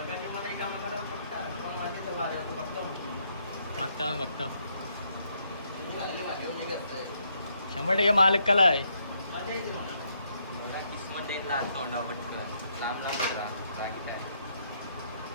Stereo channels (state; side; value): inverted; both; correlation -0.74